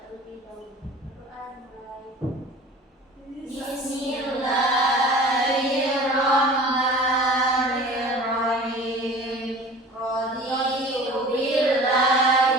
terlebih dahulu. Berdoa mulai. Bismillahirrahmanirrahim. Raditu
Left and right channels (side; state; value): both; normal; correlation 0.42